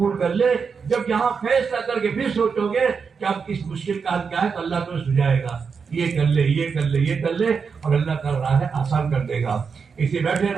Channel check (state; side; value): quieter; left; 5.7 dB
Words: کر لے۔ جب یہاں فیصلہ کر کے پھر سوچو گے کہ اب اس مشکل کا حل کیا ہے، تو اللہ تمہیں سجائے گا، یہ کر لے، یہ کر لے، یہ کر لے، اور اللہ کا راہ ہے آسان کر دے گا۔ اسے بیٹھے